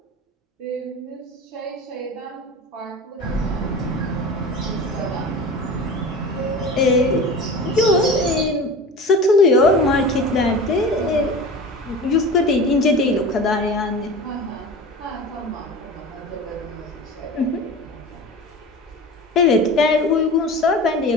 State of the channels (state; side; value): normal; both; correlation 0.34